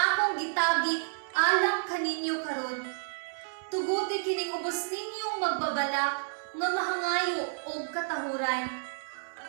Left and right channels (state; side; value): silent; left; digital silence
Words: gitagit alang kaninyo karon. Tuguti kining ubos ninyong magbabalak nga mahangayo og katahuran.